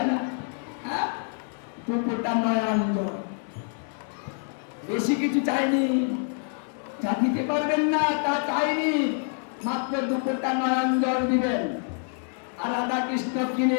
না। হ্যাঁ, 2 ফোঁটা নয়ন জল, বেশি কিছু চাইনি। যা দিতে পারবেন না তা চাইনি, মাত্র 2 ফোঁটা নয়ন জল দিবেন, আর রাধা কৃষ্ণ কিনে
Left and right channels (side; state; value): right; silent; 55 dB below the other